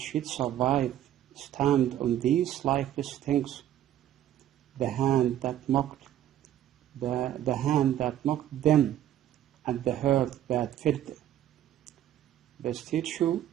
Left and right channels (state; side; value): quieter; left; 11.7 dB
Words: yet survive, stand on these lifeless things, the hand that mocked them, and the heart that filled. The statue,